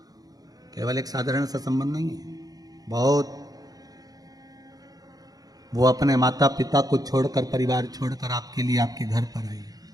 केवल एक साधारण सा संबंध नहीं है। बहुत वो अपने माता पिता को छोड़कर, परिवार छोड़कर आपके लिए आपके घर पर आई,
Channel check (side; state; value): left; late; 0.18 ms